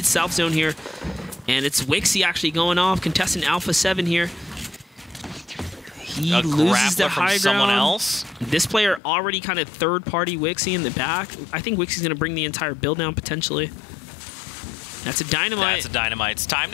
south zone here. And it's Wixie actually going off, contestant Alpha 7 here. He loses the high ground. Someone else. This player already kind of third-party Wixie in the back. I think Wixie's going to bring the entire build down potentially. That's a dynamite. That's a dynamite. It's time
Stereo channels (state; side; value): drops out; right; at 9.0 s